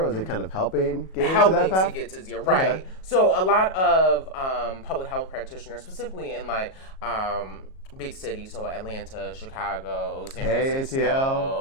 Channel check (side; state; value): right; late; 37 ms